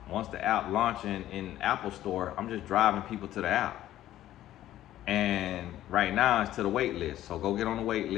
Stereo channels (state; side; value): quieter; right; 13.3 dB